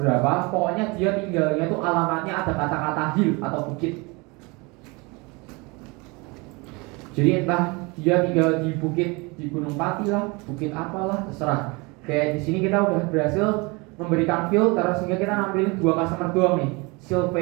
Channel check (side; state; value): left; quieter; 27.1 dB